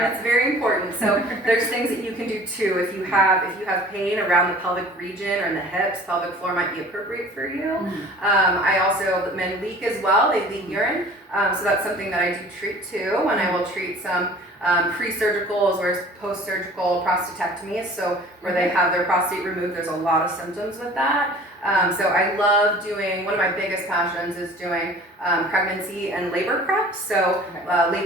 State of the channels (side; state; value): both; normal; correlation 0.46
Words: it's very important. So there's things that you can do too. If you have pain around the pelvic region or in the hips, pelvic floor might be appropriate for you. I also, men leak as well. They leak urine, so that's something that I do treat too. And I will treat some pre-surgical as well as post-surgical prostatectomies. So where they have their prostate removed, there's a lot of symptoms with that. So I love doing, one of my biggest passions is doing pregnancy and labor prep. So